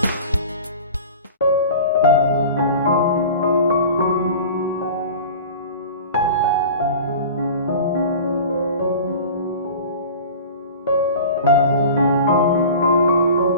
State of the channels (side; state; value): both; inverted; correlation -0.38